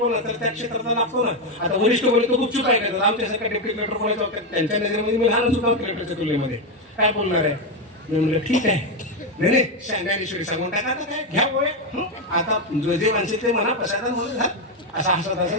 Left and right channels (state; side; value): normal; both; correlation 0.07